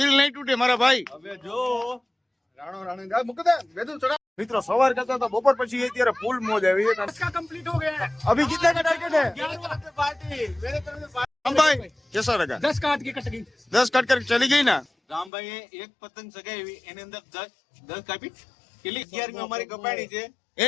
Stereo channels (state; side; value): drops out; right; at 15.3 s